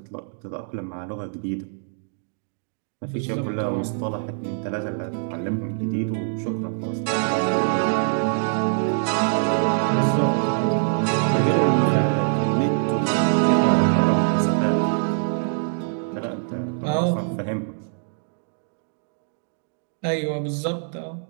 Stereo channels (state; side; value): silent; left; digital silence